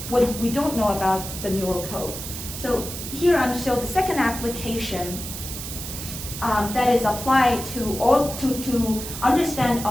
What if we don't know about the neural code? So here I'm showing the second application that is applied to understand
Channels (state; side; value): noise; right; hiss, 8 dB below the sound